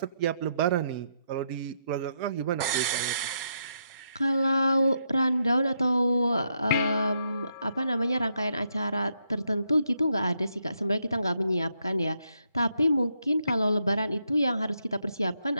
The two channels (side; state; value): both; inverted; correlation -0.78